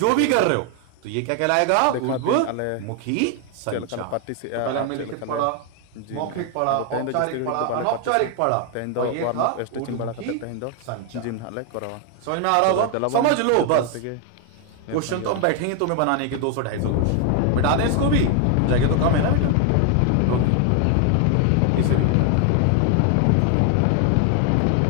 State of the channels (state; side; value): different; both; correlation 0.00